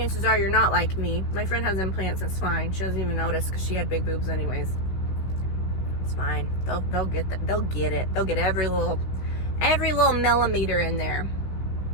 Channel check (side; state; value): right; late; 16 ms